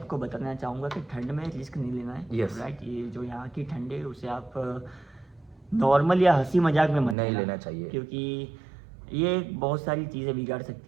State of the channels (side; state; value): left; drops out; at 7.2 s